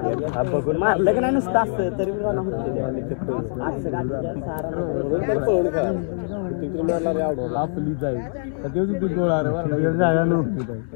बघून मारलं की नाही नुसतं असतं तरी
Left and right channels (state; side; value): silent; right; digital silence